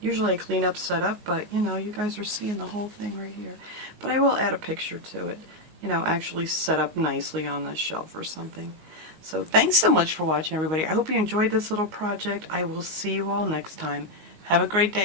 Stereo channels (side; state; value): left; late; 19 ms